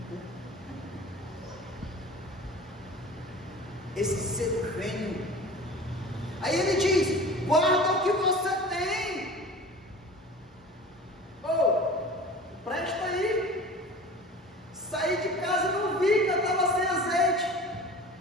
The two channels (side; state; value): both; normal; correlation 0.39